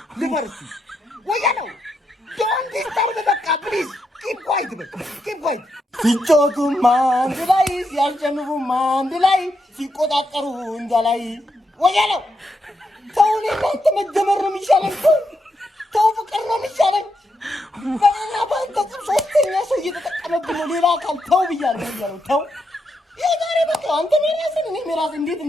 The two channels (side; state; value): both; normal; correlation 0.82